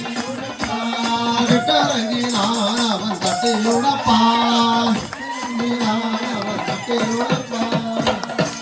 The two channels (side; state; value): both; identical; correlation 1.00